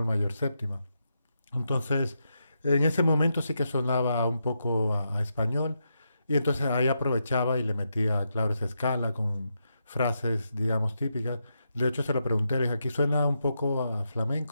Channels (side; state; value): both; inverted; correlation -0.84